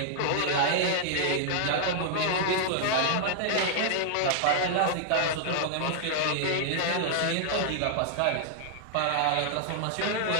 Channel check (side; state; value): both; different; correlation -0.01